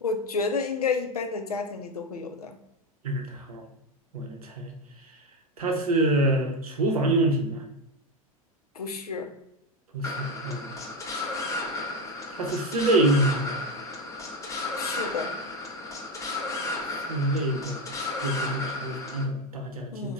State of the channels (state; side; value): normal; both; correlation 0.12